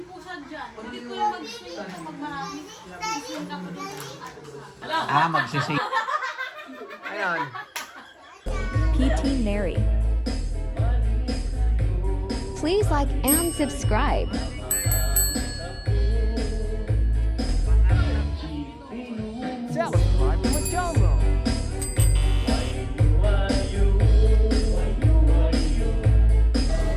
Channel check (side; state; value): both; identical; correlation 1.00